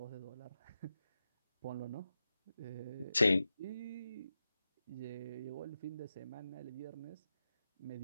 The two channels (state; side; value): inverted; both; correlation -0.90